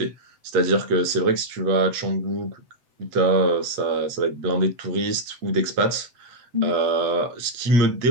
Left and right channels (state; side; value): late; left; 8.5 ms